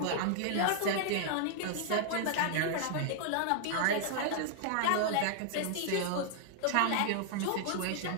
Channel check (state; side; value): different; both; correlation 0.00